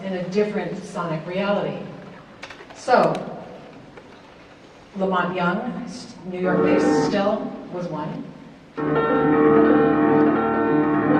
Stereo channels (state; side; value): identical; both; correlation 1.00